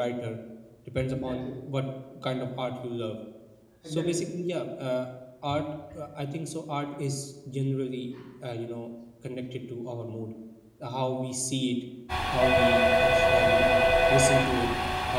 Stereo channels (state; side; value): identical; both; correlation 1.00